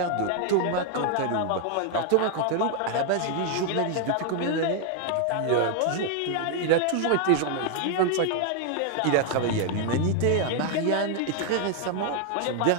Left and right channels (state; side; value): different; both; correlation 0.00